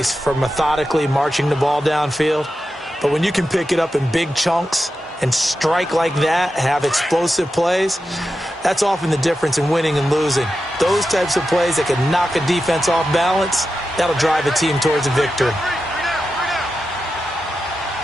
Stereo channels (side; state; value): both; normal; correlation 0.90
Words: for methodically marching the ball downfield. But when you can pick it up in big chunks and strike like that, have explosive plays, that's often the difference in winning and losing. Those types of plays that can knock a defense off balance, that'll drive a team towards a victory.